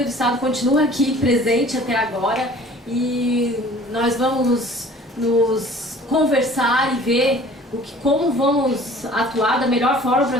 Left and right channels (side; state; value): both; normal; correlation 0.49